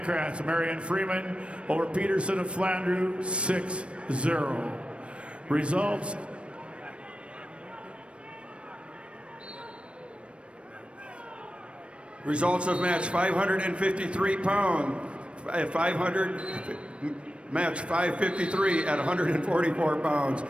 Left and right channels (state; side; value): late; left; 0.060 ms